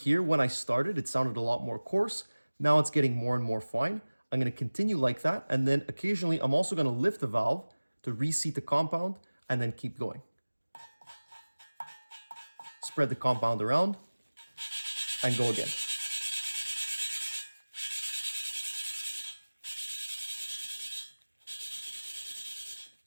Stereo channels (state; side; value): inverted; both; correlation -1.00